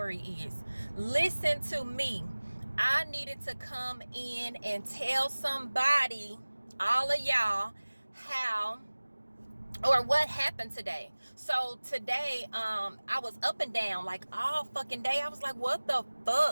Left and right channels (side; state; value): both; inverted; correlation -1.00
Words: is. Listen to me. I needed to come in and tell somebody, all of y'all, how or what happened today. So today, I was up and down like all fucking day. I was like, what the